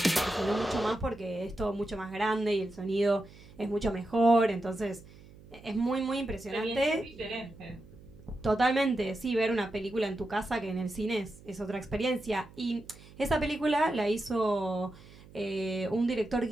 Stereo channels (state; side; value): noise; right; hum, 21 dB below the sound